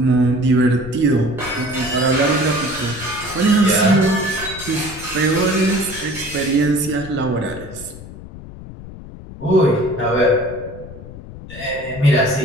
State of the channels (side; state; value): left; noise; rumble, 14 dB below the sound